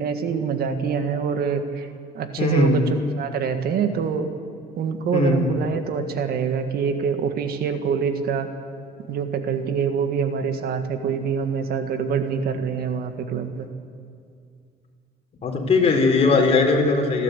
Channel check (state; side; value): normal; both; correlation 0.42